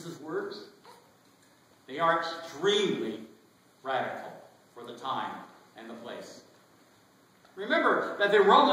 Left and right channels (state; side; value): identical; both; correlation 1.00